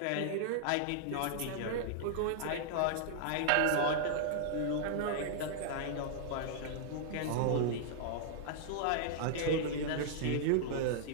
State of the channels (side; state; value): both; different; correlation -0.01